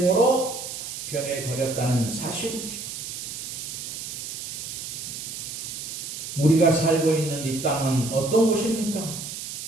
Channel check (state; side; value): noise; right; hiss, 7 dB below the sound